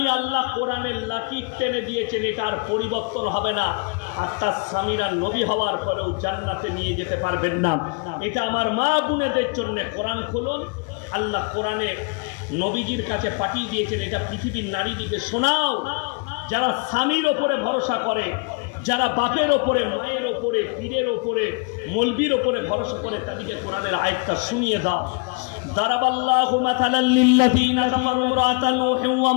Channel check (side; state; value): right; quieter; 32.9 dB